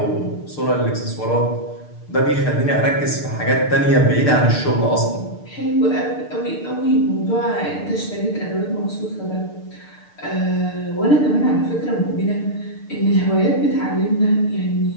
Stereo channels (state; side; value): late; right; 6.7 ms